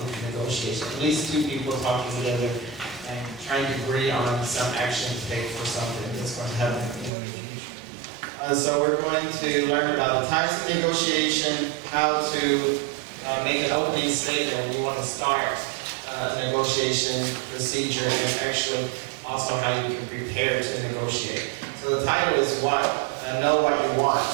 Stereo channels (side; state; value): left; drops out; at 7.1 s